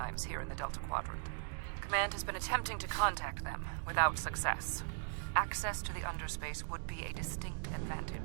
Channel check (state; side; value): silent; left; digital silence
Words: here in the Delta Quadrant. Command has been attempting to contact them, without success. Access to the underspace would be a distinct